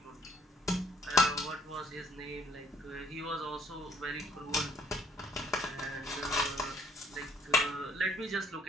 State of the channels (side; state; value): both; normal; correlation 0.62